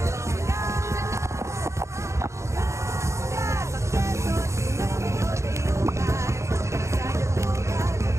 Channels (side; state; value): left; late; 0.14 ms